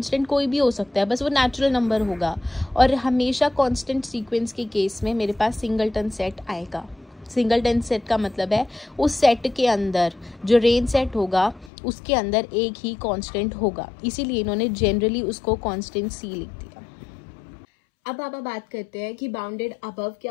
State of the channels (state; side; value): drops out; right; at 11.7 s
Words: कोई भी हो सकता है, बस वो नेचुरल नंबर होगा और हमेशा कांस्टेंट सीक्वेंस के केस में मेरे पास सिंगल टर्न सेट आएगा। सिंगल टर्न सेट का मतलब है उस सेट के अंदर जो रेंज सेट होगा उसके अंदर एक ही कांस्टेंट होगा, इसीलिए इन्होंने जनरली उसको कांस्टेंट सी लिख दिया। अब आप बात करते हैं कि बाउंडेड अबव